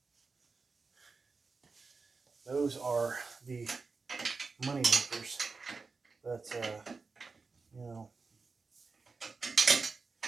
those are the money makers. But, you know,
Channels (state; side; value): quieter; left; 4.4 dB